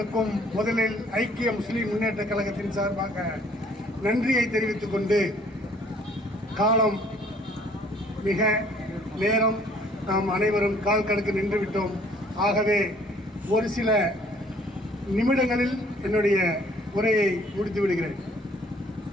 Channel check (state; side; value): normal; both; correlation 0.58